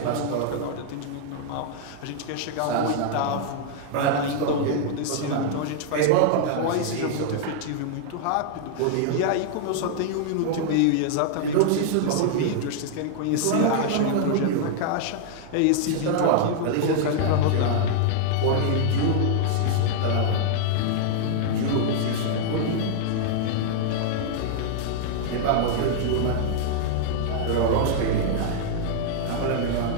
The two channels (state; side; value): different; both; correlation -0.01